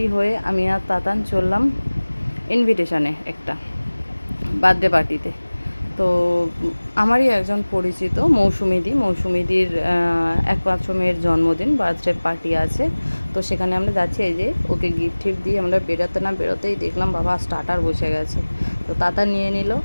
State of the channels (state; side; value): inverted; both; correlation -1.00